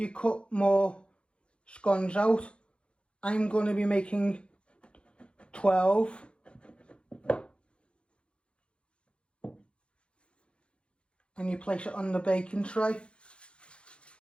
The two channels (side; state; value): right; late; 0.057 ms